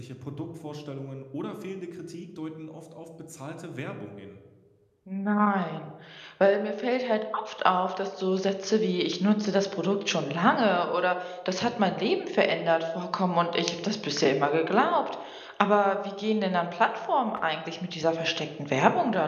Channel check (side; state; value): both; identical; correlation 1.00